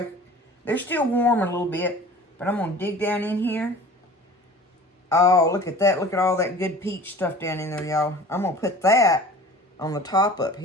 they're still warm a little bit. But I'm going to dig down in here. Oh, look at that. Look at all that good peach stuff down in there, y'all. I'm going to put that on the top up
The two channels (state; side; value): normal; both; correlation 0.43